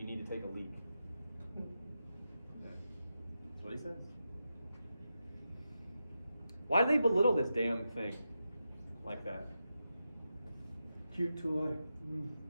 need to take a leak. That's what he says. Why do they belittle this damn thing like that? Cute toy.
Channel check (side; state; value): both; inverted; correlation -0.89